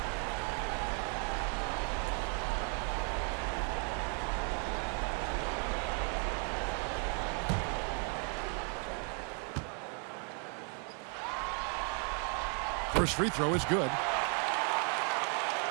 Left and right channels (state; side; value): quieter; left; 40.0 dB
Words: First free throw is good.